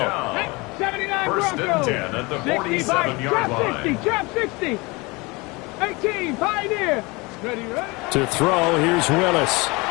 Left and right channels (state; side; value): quieter; right; 25.2 dB